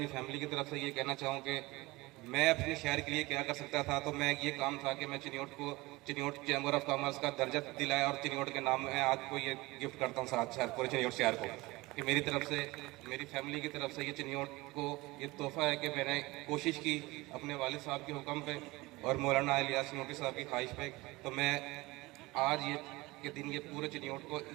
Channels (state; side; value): quieter; left; 21.4 dB